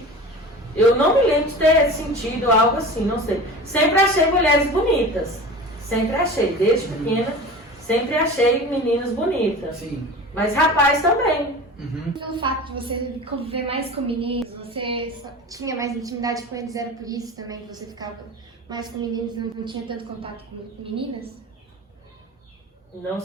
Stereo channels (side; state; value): both; normal; correlation 0.35